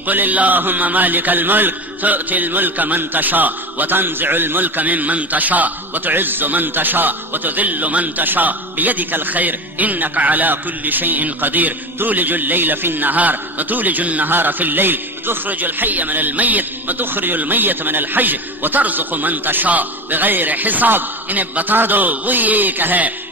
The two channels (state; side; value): normal; both; correlation 0.26